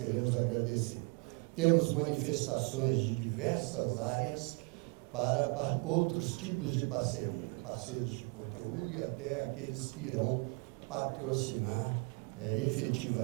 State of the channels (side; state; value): left; quieter; 31.5 dB